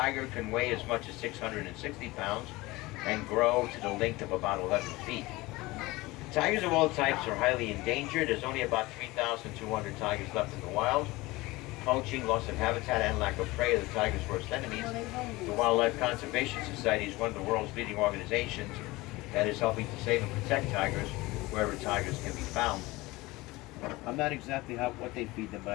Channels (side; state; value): right; quieter; 20.9 dB